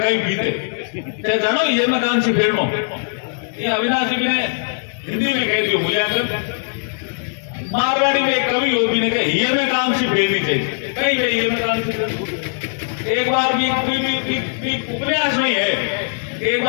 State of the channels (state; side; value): silent; right; digital silence